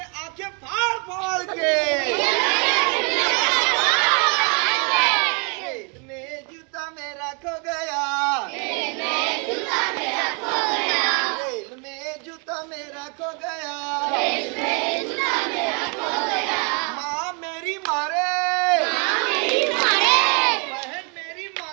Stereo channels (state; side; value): quieter; left; 35.4 dB